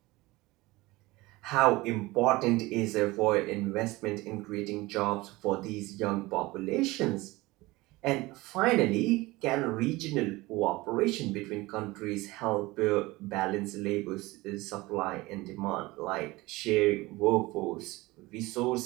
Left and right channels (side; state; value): left; quieter; 20.9 dB